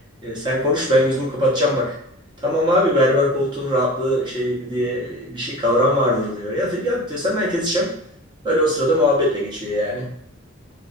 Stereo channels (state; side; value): normal; both; correlation 0.35